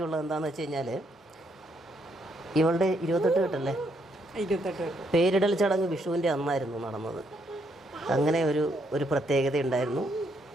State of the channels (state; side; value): normal; both; correlation 0.74